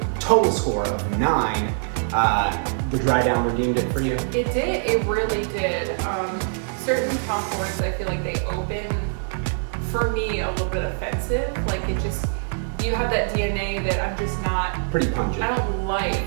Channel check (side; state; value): left; silent; 63 dB below the other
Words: total score of 9. The dry down redeemed it for you? It did, it really did. Certain Tom Fords, I feel like they open, for me, a little bit offensive. Like it just, you have that DNA that I'm just not, pretty pungent. I don't like